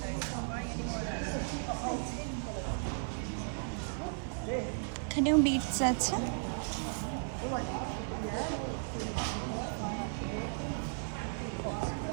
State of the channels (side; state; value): left; silent; 54 dB below the other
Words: এখানেও বিটস আছে।